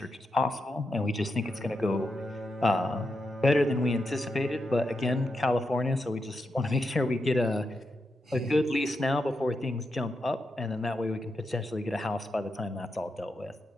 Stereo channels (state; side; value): normal; both; correlation 0.86